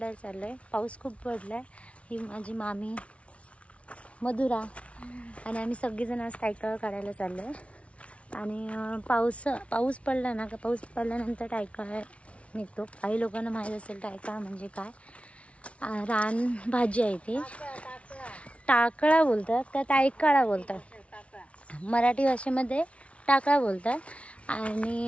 चाललो आहे। पाऊस खूप पडला आहे। ही माझी मामी मधुरा आणि आम्ही सगळेजण आज टायकाळा काढायला चाललो आहे। आणि पाऊस पडला ना, पाऊस पडल्यानंतर टायकाळा निघतो। काही लोकांना माहीत असेल टायकाळा म्हणजे काय। रान भाजी आहे ती, टाकळा बोलतात का टायकाळा बोलतात, मराठी भाषेमध्ये टाकळा बोलतात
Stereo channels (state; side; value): late; right; 0.062 ms